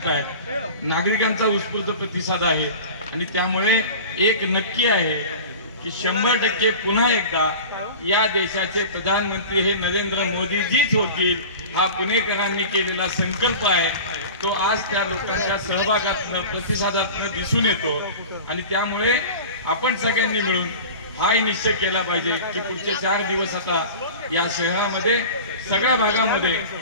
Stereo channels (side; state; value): both; inverted; correlation -0.35